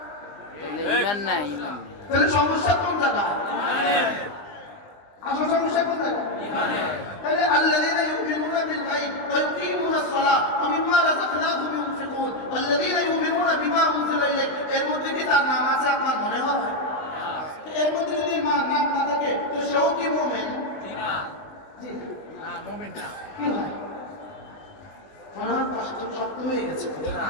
ঈমান নাই। তাহলে সমস্যা কোন জায়গায়? আসল সমস্যা কোন জায়গায়? তাহলে আল্লাযীনা ইউমিনুনা বিল গায়ব ওয়া ইউকিমুনাস সালাহ ওয়া মিম্মা রাযাকনাহুম ইউনফিকুন ওয়াল্লাযীনা ইউমিনুনা বিমা উনজিলা ইলাইক। এর মধ্যে কি তার নাম আছে আপনার মনে হয়? এর মধ্যে যদি নাম না থাকে তো সেও কি মুমিন? জি না, মুমিন না। কি হয়? মনে হয় কষ্ট শক্ত হয়ে গেছে।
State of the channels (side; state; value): right; late; 20 ms